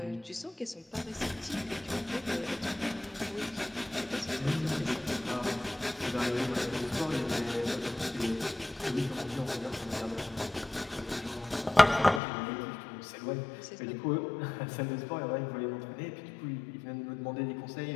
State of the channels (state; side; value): drops out; right; at 12.2 s